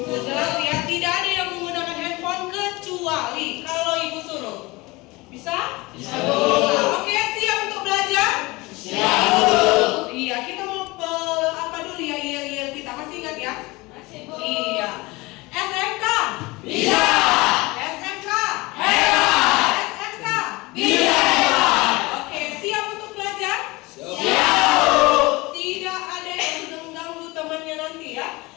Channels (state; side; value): quieter; right; 22.8 dB